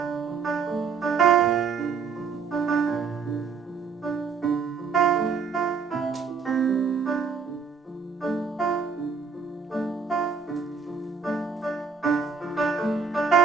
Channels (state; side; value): quieter; left; 5.5 dB